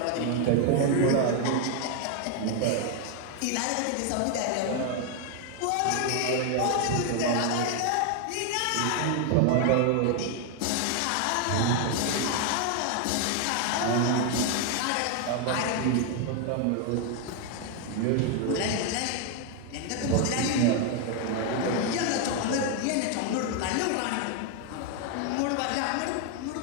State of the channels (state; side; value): different; both; correlation 0.01